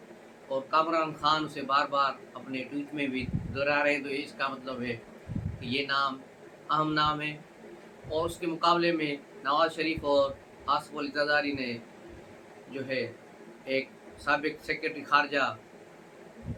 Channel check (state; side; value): identical; both; correlation 1.00